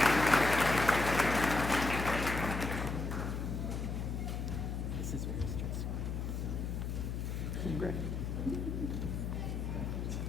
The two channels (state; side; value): noise; left; hum, 3 dB below the sound